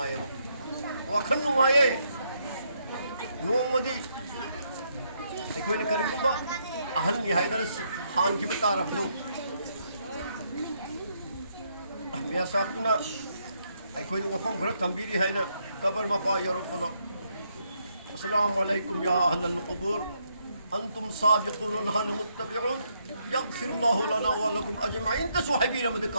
वखन नुआये नोमदी अखोई ने करिबा अहल निहायदर हान की बता रबदो मिया साहबना अखोई वखम घर तंबीरी हैना कबर मपा यरफनो अस्सलामु अलैकुम या अहलल क़ुबूर अंतुम साबिक़ून नहनु मुत्तबिऊन यग़फिरुल्लाहु लना व लकुम अजमईन तसुहबी रमद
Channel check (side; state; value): both; inverted; correlation -0.75